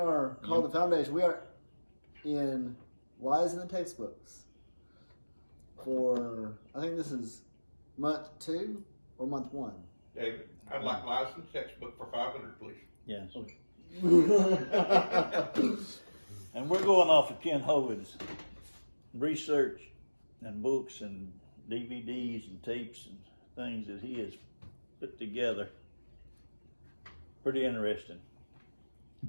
called the Foundation. We are in Lies in the Textbooks for, I think this is month 2 or month 1. David, I'd like Lies in the Textbook for 500, please. Yes. Okay. And we're going off of Ken Hovind's research and books and DVDs and tapes and things that he has put together. Pretty interesting.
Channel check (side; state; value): both; inverted; correlation -1.00